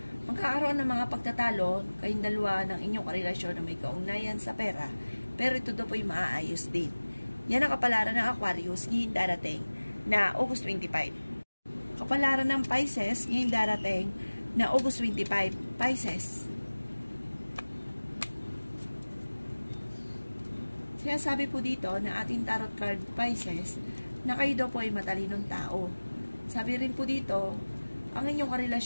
magkakaroon ng mga pagtatalo kayong dalawa ng inyong karelasyon na may kaugnayan sa pera pero ito daw po ay maaayos din. Yan ang kapalaran ng Aquarius ngayong darating na August 25. Kapalaran ng Pisces ngayong darating na August 25. Pisces. Sinasabi po dito na ating tarot card Pisces na kayo daw po ay matalinong tao. Sabi rin po dito, ang inyong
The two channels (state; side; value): inverted; both; correlation -1.00